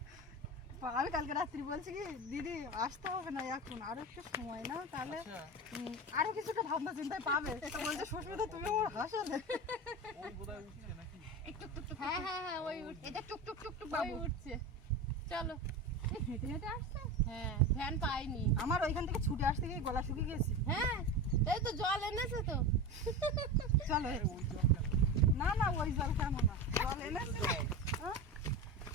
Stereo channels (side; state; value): both; normal; correlation 0.25